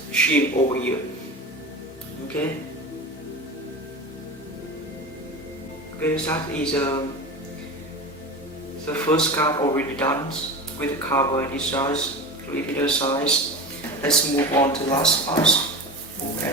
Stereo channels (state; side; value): normal; both; correlation 0.29